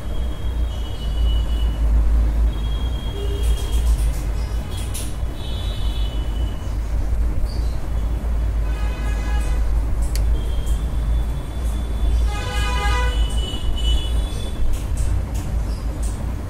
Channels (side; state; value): both; identical; correlation 1.00